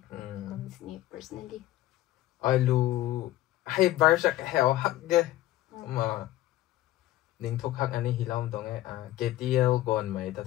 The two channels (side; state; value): right; quieter; 15.2 dB